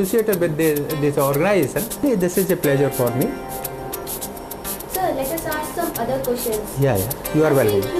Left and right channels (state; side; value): identical; both; correlation 1.00